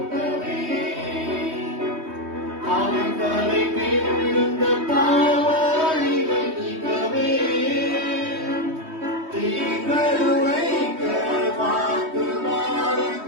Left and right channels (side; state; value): left; late; 3.2 ms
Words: அவன் தலை மேலிருந்த பாவ அழிவை நீக்கவே. தீங்கருவைக்க வாக்கு மாறும்